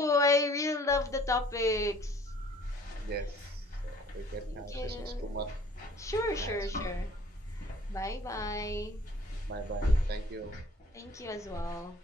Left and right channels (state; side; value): normal; both; correlation 0.54